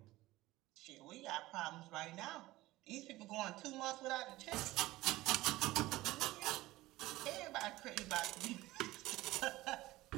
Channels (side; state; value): left; quieter; 18.1 dB